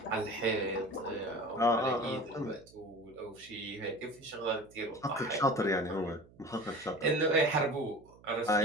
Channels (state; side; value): noise; right; hum, 25 dB below the sound